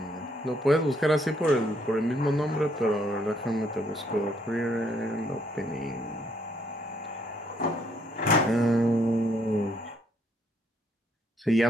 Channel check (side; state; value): both; normal; correlation 0.70